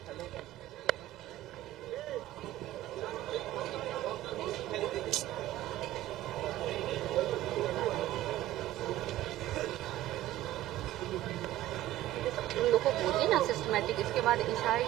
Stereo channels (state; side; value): quieter; left; 14.5 dB